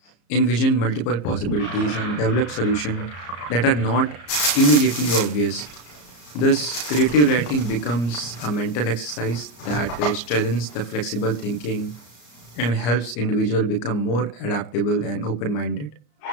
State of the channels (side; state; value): right; late; 34 ms